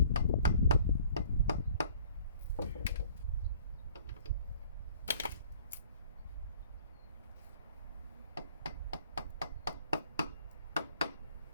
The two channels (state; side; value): inverted; both; correlation -0.53